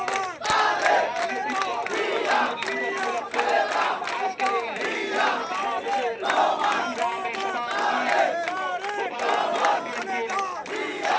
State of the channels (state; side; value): identical; both; correlation 1.00